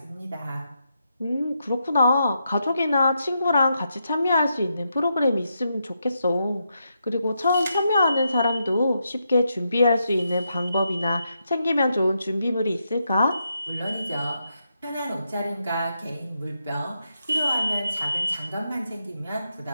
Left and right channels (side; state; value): both; inverted; correlation -0.83